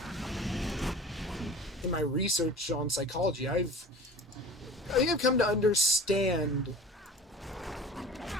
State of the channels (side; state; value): both; normal; correlation 0.41